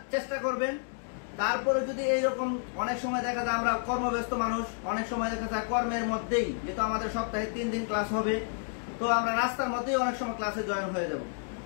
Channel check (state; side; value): silent; right; digital silence